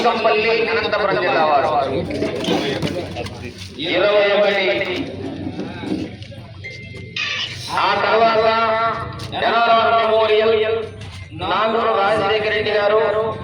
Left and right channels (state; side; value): identical; both; correlation 1.00